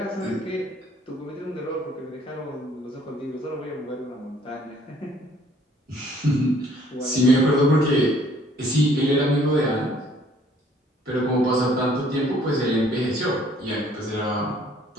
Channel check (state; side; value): normal; both; correlation 0.60